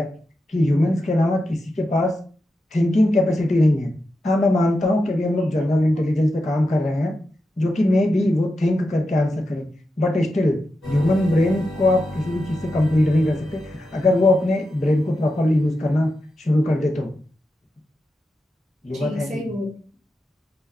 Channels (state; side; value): normal; both; correlation 0.89